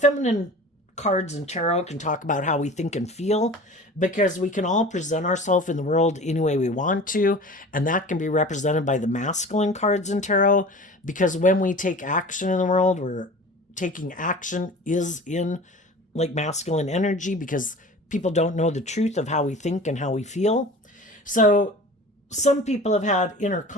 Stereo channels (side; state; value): both; normal; correlation 0.39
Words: cards in tarot can talk about how we think and feel, because we can all present ourselves in the world any way we want to, and that can be represented by the masculine cards in tarot, because when we take action in the world, we're taking action is in like masculine energy, because people don't know the truth of how we think and how we feel. So some people have had inner